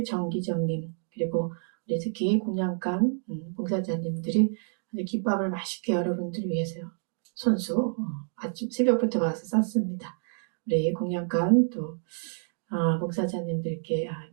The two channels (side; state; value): left; silent; 59 dB below the other